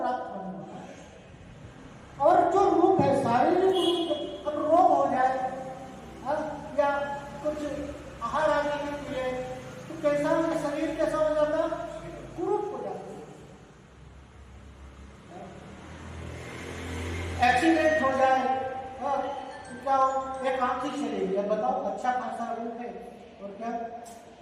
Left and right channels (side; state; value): both; identical; correlation 1.00